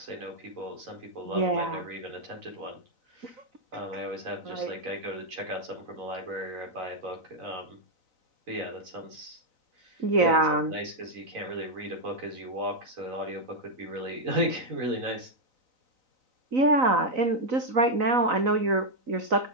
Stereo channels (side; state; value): left; late; 3.9 ms